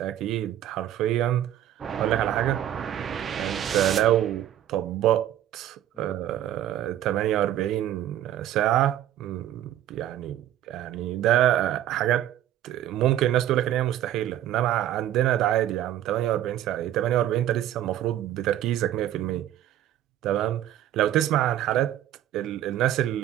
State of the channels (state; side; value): quieter; left; 12.1 dB